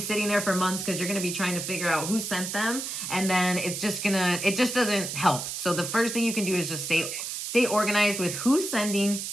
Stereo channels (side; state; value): right; noise; hiss, 5 dB below the sound